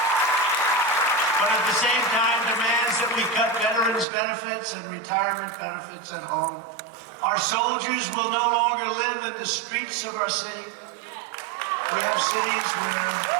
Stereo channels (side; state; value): left; drops out; at 4.0 s